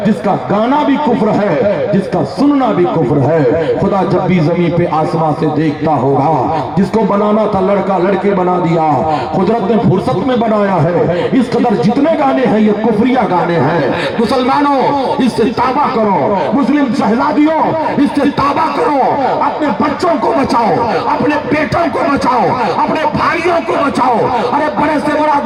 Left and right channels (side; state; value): right; noise; hum, 27 dB below the sound